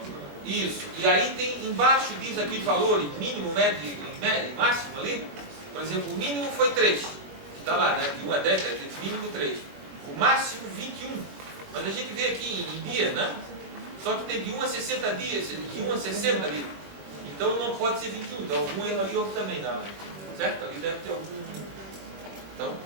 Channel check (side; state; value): left; late; 21 ms